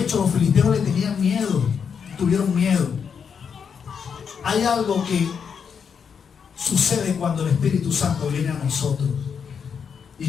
los filisteos le tenían miedo, tuvieron miedo. Hay algo que sucede cuando el Espíritu Santo viene a nosotros y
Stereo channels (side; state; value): right; quieter; 6.7 dB